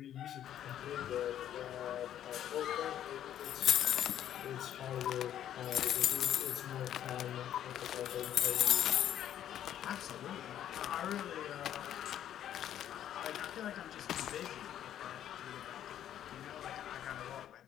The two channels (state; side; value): quieter; right; 10.9 dB